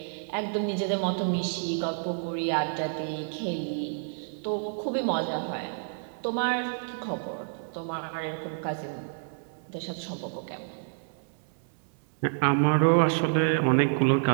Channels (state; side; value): silent; left; digital silence